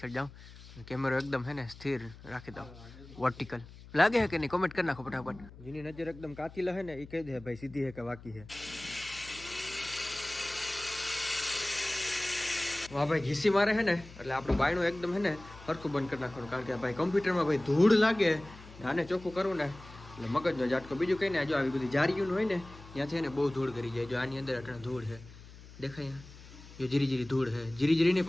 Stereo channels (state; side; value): noise; left; hum, 18 dB below the sound